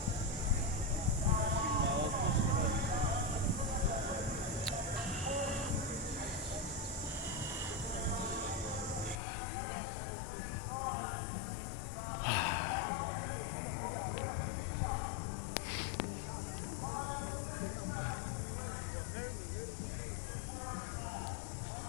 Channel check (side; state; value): right; drops out; at 9.2 s